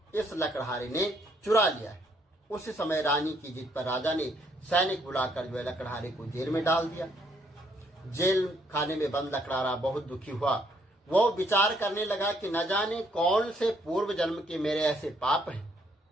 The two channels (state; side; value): normal; both; correlation 0.69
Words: इस लकड़हारे ने चुरा लिया है। उसी समय रानी की जिद पर राजा ने सैनिक बुलाकर जो है लकड़हारे को जेल में डाल दिया। जेल खाने में बंद लकड़हारा बहुत दुखी हुआ। वो विचार करने लगा कि न जाने कौन से पूर्व जन्म के मेरे ऐसे पाप हैं,